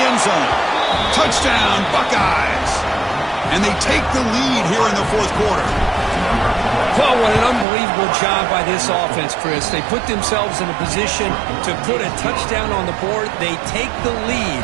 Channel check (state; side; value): drops out; left; at 7.7 s